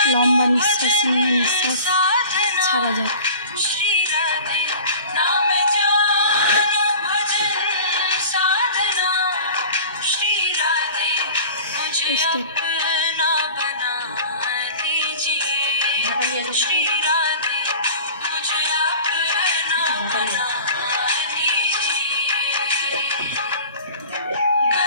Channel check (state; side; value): inverted; both; correlation -0.41